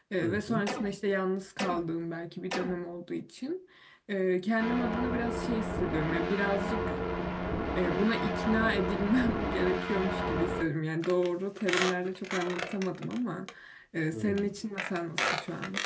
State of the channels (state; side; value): identical; both; correlation 1.00